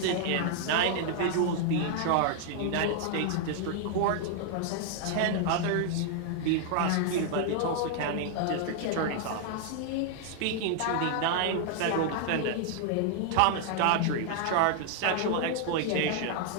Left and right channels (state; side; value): different; both; correlation 0.00